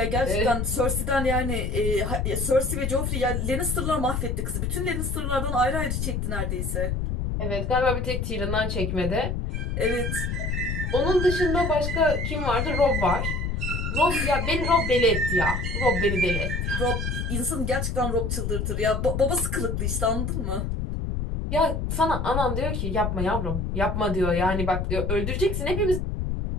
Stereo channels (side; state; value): left; noise; rumble, 1 dB below the sound